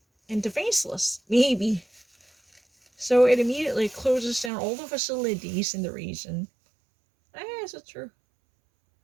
and defenseless, maybe. So it immediately closes down all the facilities in the region. Is it true?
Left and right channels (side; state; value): left; drops out; at 4.5 s